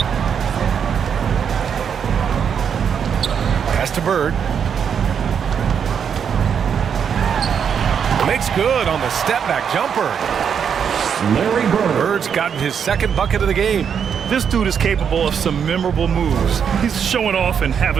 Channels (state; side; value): quieter; left; 7.5 dB